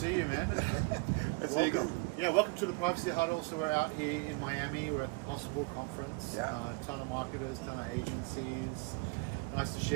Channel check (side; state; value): left; quieter; 28.1 dB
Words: you, man. Welcome. Yeah, welcome to the Privacy Huddle. So we're out here in Miami. We're at the Possible Conference. Yeah. Ton of marketers, ton of agencies. Nice to